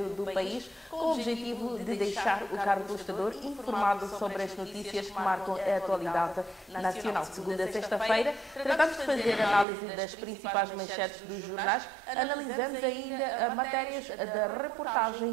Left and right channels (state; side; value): drops out; left; at 9.7 s